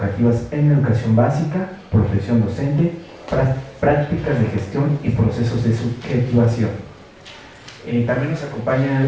en educación básica, profesión docente, prácticas de gestión y procesos de subjetivación. También nos acompaña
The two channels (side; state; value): both; identical; correlation 1.00